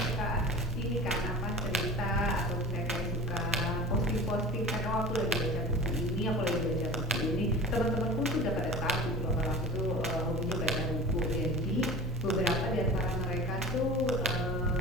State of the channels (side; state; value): both; normal; correlation 0.36